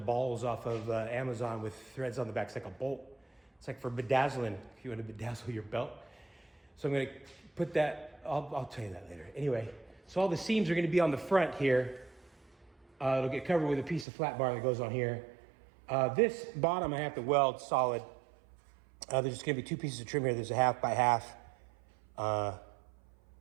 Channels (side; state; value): left; drops out; at 14.1 s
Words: off of Amazon with threads on the back. It's like a bolt. It's like for bedazzling, if you want to bedazzle your belt. So I'm gonna put that, I'll tell you that later. Anyway, so all the seams are gonna be on the front here. It'll get covered with a piece of flat bar that goes on here. This bottom I have to weld solid. There's just gonna be 2 pieces of trim here. There's a 1/2 by 1/2